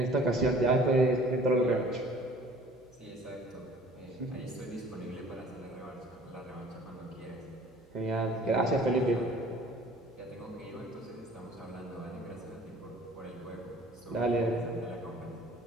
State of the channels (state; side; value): noise; right; hum, 29 dB below the sound